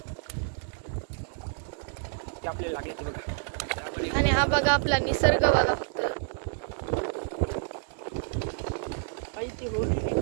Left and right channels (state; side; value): silent; left; 58 dB below the other